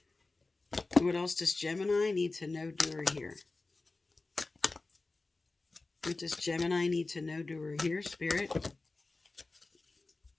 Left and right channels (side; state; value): right; quieter; 3.4 dB